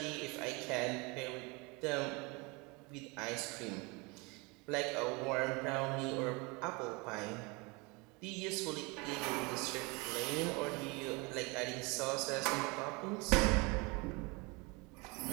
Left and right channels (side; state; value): left; quieter; 27.5 dB